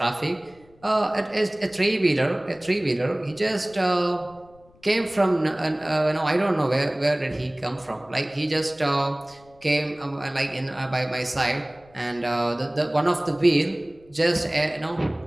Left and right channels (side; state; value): left; noise; rumble, 28 dB below the sound